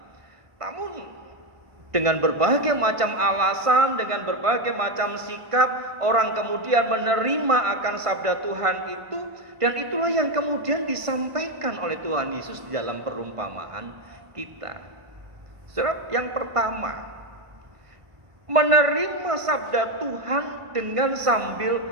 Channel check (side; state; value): left; late; 1.5 ms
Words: Namun dengan berbagai macam alasan, dengan berbagai macam sikap, orang kemudian menerima akan sabda Tuhan itu, dan itulah yang kemudian disampaikan oleh Tuhan Yesus di dalam perumpamaan kita. Saudara, yang pertama, menerima sabda Tuhan dengan sambil